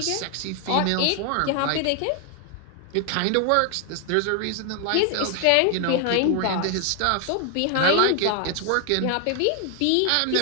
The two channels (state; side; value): different; both; correlation 0.00